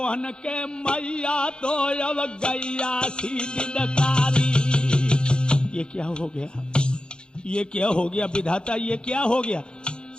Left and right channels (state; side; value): late; right; 0.050 ms